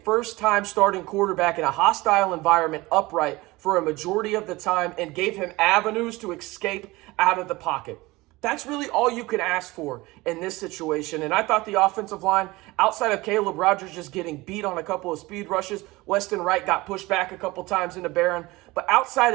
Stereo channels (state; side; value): quieter; left; 21.0 dB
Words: first-time starting quarterback in a hostile environment upright for a majority of the time and gave him avenues to escape out of the pocket. That's really all you can ask for in this situation. And I thought the offensive line, outside of Caleb Rogers just getting beat on a couple of speed rushes, Weston Wright got pushed back a couple times into Behren. But outside